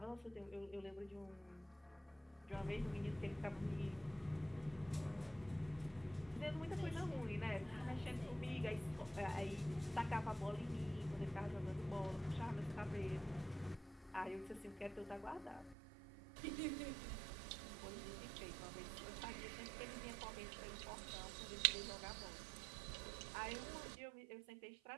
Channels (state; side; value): drops out; left; at 15.8 s